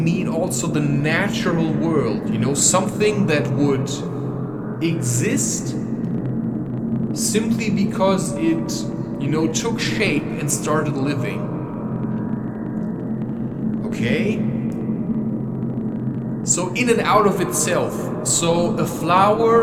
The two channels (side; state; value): both; identical; correlation 1.00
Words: also the natural world, something that would exist simply because it, took shape and started living. Okay? So in and out of itself. So a